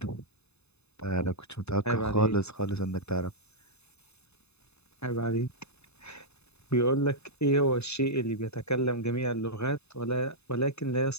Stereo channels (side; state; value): right; late; 0.80 ms